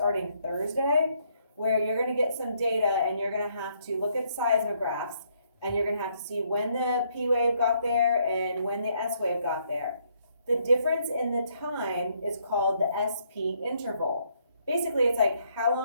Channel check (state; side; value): inverted; both; correlation -0.71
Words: Thursday, where you're going to get some data and you're going to have to look at seismographs, and you're going to have to see when the P wave got there and when the S wave got there. The difference in the time is called the SP interval. Basically, it's like how